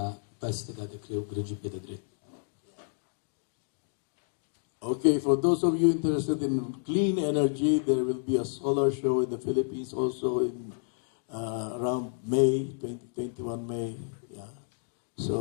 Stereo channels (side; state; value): right; silent; digital silence